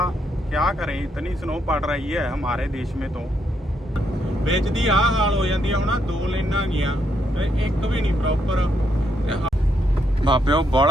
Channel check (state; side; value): normal; both; correlation 0.77